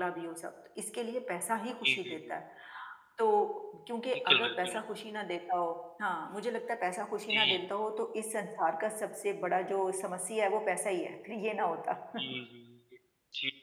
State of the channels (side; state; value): both; identical; correlation 1.00